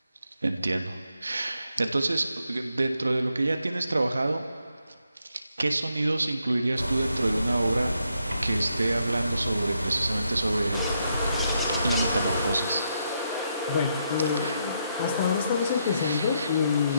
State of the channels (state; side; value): inverted; both; correlation -0.78